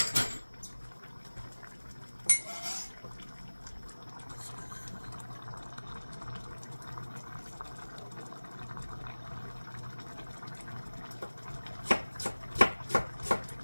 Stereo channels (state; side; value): inverted; both; correlation -1.00